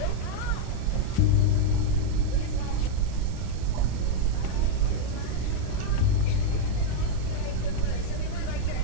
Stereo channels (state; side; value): different; both; correlation -0.01